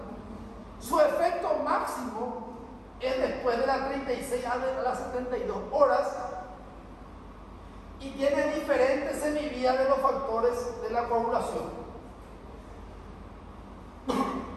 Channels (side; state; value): both; identical; correlation 1.00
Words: Su efecto máximo es después de las 36 a las 72 horas. Y tiene diferentes semivías de los factores de la coagulación.